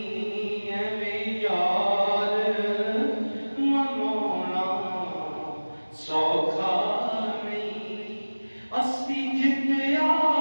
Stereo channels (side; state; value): both; inverted; correlation -1.00